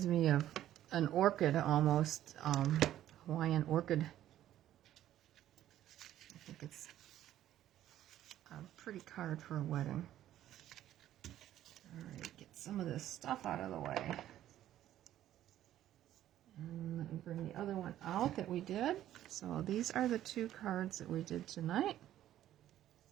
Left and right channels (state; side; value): quieter; left; 12.5 dB